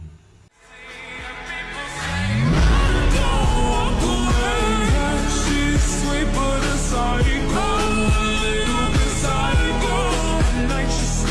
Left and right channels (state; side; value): identical; both; correlation 1.00